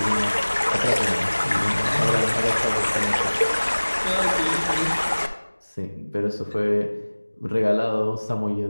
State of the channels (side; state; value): both; inverted; correlation -1.00